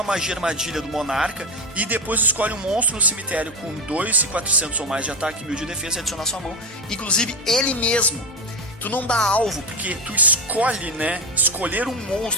magia armadilha do monarca e depois escolhe um monstro no cemitério com 2.400 ou mais de ataque e 1.000 de defesa e adiciona à sua mão, inclusive ele mesmo. Tu não dá alvo, porque tu escolhe, né? Escolher um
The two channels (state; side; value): normal; both; correlation 0.15